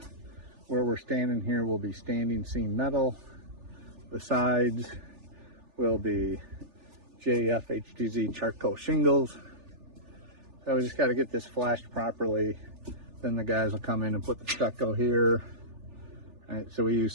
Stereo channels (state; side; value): late; left; 3.4 ms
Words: Where we're standing here will be standing seam metal. The sides will be JF HTZ charcoal shingles. So we just got to get this flashed properly. Then the guys will come in and put the stucco here. All right, so we use